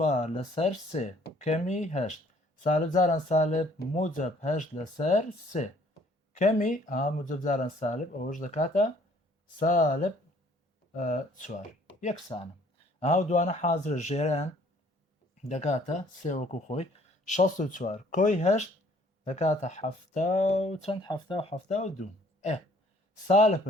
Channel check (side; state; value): both; normal; correlation 0.59